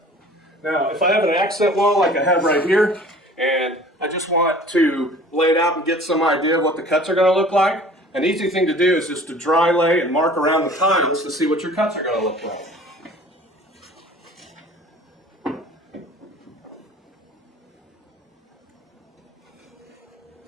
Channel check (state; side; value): normal; both; correlation 0.47